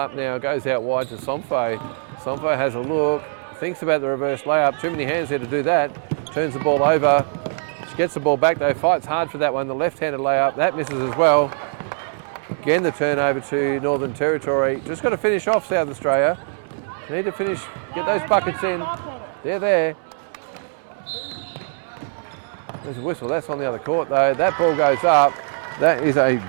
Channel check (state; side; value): silent; left; digital silence